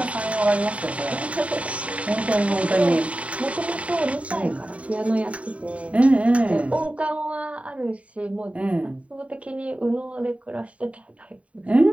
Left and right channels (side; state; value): left; late; 0.065 ms